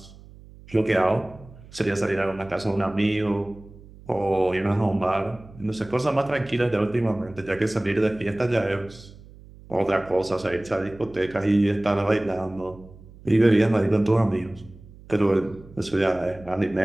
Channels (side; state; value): right; noise; hum, 21 dB below the sound